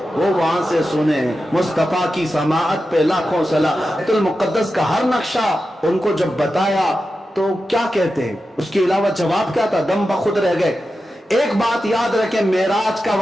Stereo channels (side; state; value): both; normal; correlation 0.91